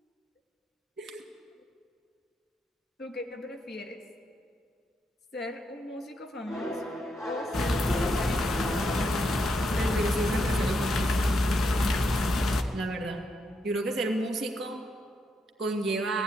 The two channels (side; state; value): both; normal; correlation 0.80